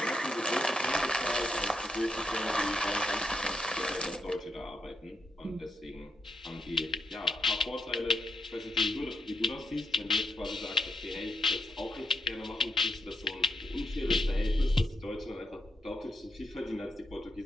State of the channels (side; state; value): both; normal; correlation 0.80